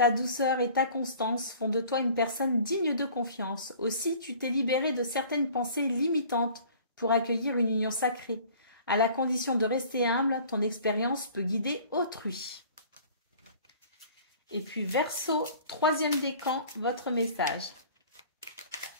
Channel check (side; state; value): both; inverted; correlation -0.49